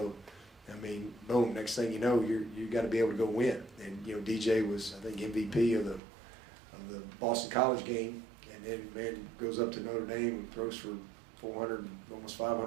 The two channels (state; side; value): drops out; left; at 6.0 s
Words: Boom, next thing you know, you got to be able to go win. And, DJ was, I think, MVP of the Boston College game, and then goes up to Notre Dame and throws for 400, almost